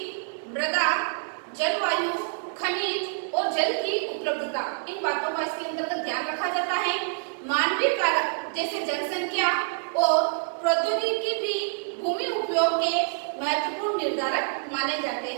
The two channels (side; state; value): left; silent; 58 dB below the other